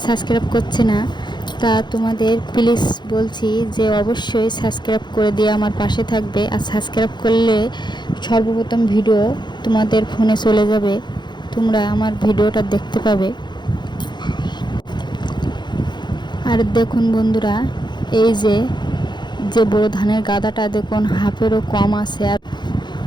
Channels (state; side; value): late; right; 0.21 ms